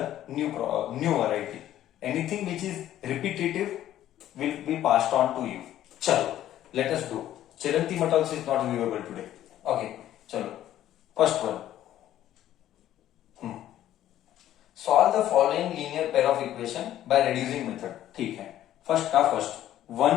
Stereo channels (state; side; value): quieter; right; 12.5 dB